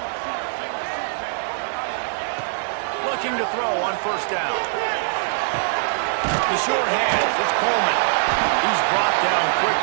Looking to throw on first down. The short hands, it's Coleman. He's brought down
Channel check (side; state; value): left; silent; digital silence